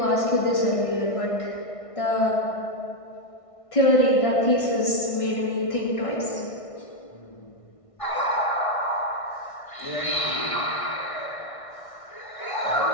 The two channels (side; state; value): right; late; 1.6 ms